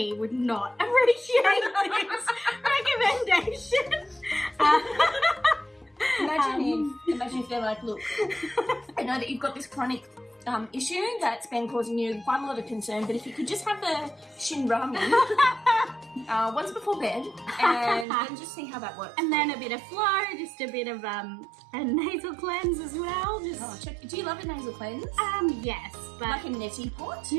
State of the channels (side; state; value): left; drops out; at 18.1 s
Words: would not appreciate this recommendation. Imagine if they're like, look, I know that you've got this chronic issue that's been causing you quite a lot of concern, but if you could just have the Shin Ramyun, once before bed, and then just see how that works. And then a bit of flow, just a bit of a nasal cleanse as well. Just check. Do you love a nasal cleanse? yes, but Like a neti pot?